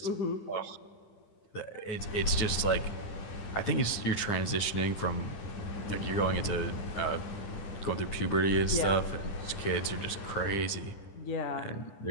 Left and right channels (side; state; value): right; late; 9.8 ms